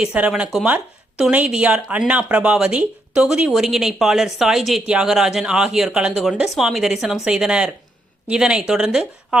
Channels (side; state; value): both; normal; correlation 0.78